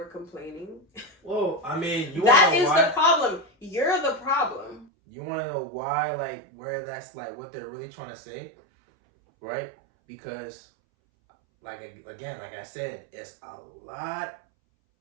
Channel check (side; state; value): left; drops out; at 4.9 s